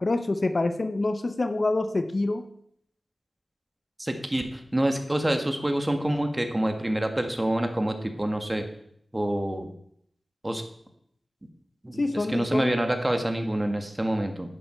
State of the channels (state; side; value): normal; both; correlation 0.97